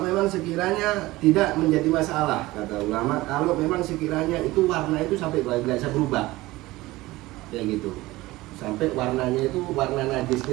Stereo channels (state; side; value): quieter; left; 19.0 dB